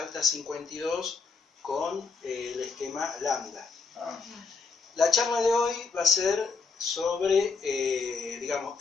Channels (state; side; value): quieter; right; 4.7 dB